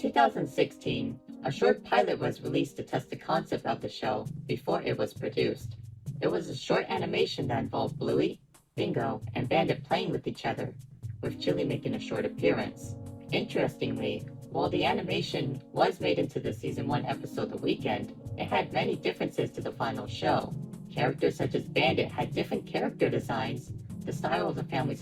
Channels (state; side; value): identical; both; correlation 1.00